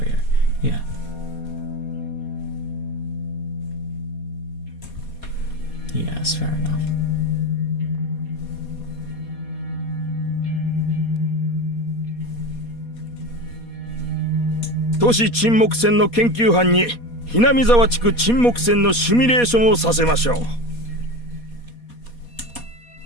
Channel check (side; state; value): right; late; 4.2 ms